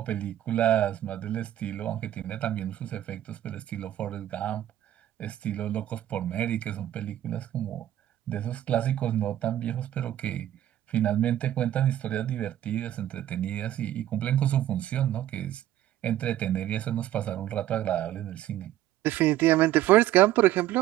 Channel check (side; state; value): left; quieter; 12.7 dB